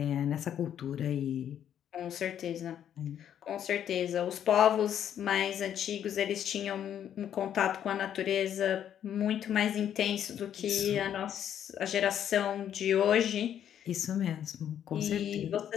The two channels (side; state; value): right; quieter; 9.8 dB